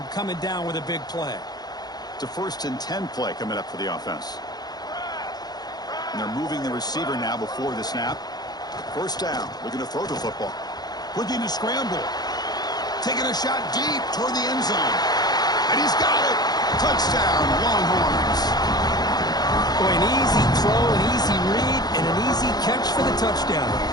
coming down with a big play. It's a 1st and 10 play coming up for the offense. And they're moving the receiver now before the snap. 1st down. Looking to throw the football. Looking to scramble. Taking a shot deep toward the end zone. And he's got it. Touchdown, Longhorns. Boy, an easy throw, an easy read, and an easy catch for the touchdown.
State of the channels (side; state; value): right; late; 0.19 ms